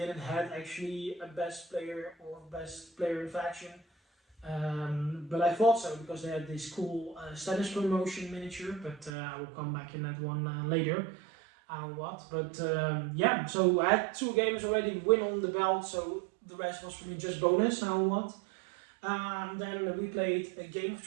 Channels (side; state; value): left; drops out; at 9.1 s